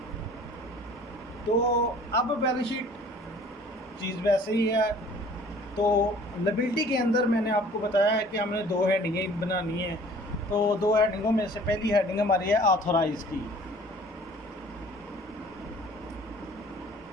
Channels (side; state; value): both; normal; correlation 0.50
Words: तो अब बैलेंस शीट चीज़ वैसे ही है। तो लायबिलिटी के अंदर मैंने आपको बताया है कि हमने 2 हेडिंगें बनानी है। तो 2 हेडिंगों में से पहली हेडिंग हमारी है ऑथोराइज की।